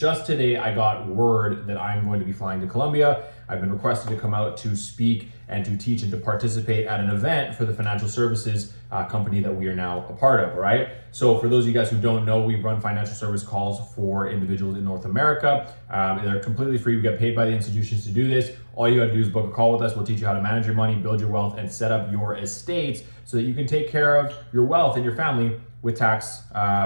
today, I got word that I'm going to be flying to Colombia. I've been requested to come out to speak and to teach and to participate at an event for the financial services company that we are now a part of, all right? So for those of you guys who don't know, we run financial service calls for individuals in North America. They're completely free. We get paid by the institutions to do this. All you gotta do is book a call with us. We'll teach you how to manage your money, build your wealth, and set up your estates so that you can take care of your wealth and your family with tax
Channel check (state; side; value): inverted; both; correlation -1.00